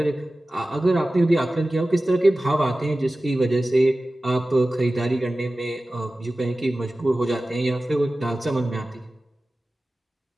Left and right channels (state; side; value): normal; both; correlation 0.96